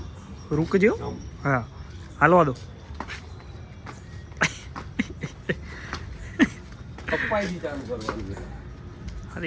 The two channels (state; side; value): identical; both; correlation 1.00